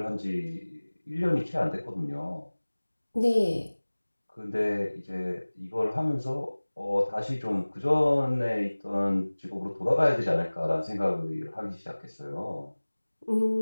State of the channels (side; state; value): both; inverted; correlation -1.00